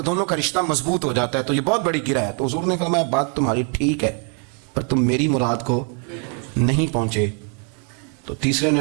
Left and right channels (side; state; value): left; quieter; 39.9 dB